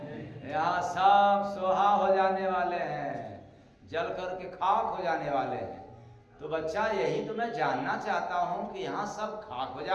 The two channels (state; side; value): identical; both; correlation 1.00